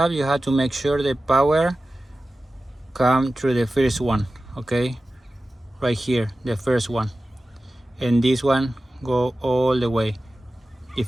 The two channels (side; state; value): both; normal; correlation 0.95